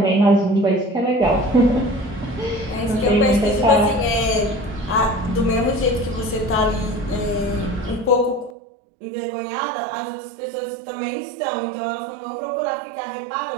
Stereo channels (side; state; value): left; drops out; at 8.6 s